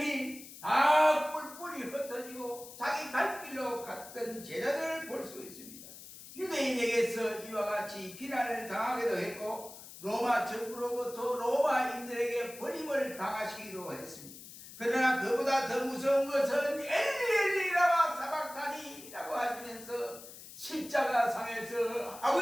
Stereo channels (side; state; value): left; noise; hiss, 15 dB below the sound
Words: 다 뿔뿔이 흩어지고 자기 갈 길로 갔던 제자들을 볼 수 있습니다. 유대인에게서 이와 같이 비난을 당하기도 했고 로마 정부로부터 로마인들에게 버림을 당하시기도 했습니다. 그러나 그보다 더 무서운 것은 엘리엘리라마 사박타니라고 하시면서 십자가상에서